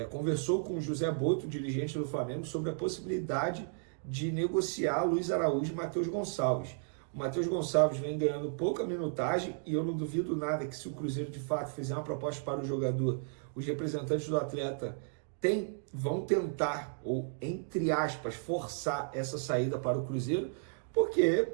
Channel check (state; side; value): silent; left; digital silence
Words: conversou com o José Boto, dirigente do Flamengo, sobre a possibilidade de negociar Luiz Araújo e Matheus Gonçalves. O Matheus Gonçalves vem ganhando pouca minutagem e eu não duvido nada que, se o Cruzeiro de fato fizer uma proposta para o jogador, os representantes do atleta vão tentar, ou entre aspas, forçar essa saída para o Cruzeiro, porque